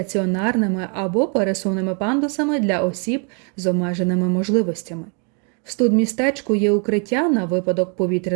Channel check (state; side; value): quieter; left; 38.4 dB